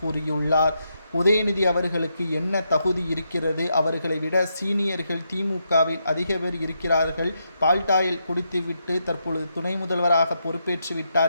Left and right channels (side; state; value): both; inverted; correlation -0.81